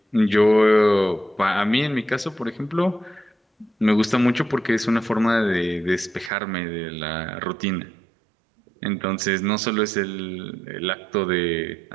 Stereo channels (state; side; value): drops out; left; at 6.3 s